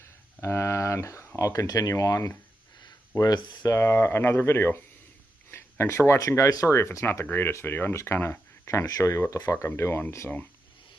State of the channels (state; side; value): normal; both; correlation 0.87